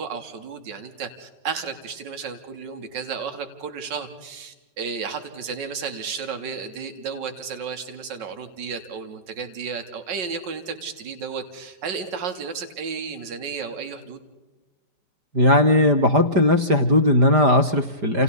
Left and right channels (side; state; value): left; late; 5.4 ms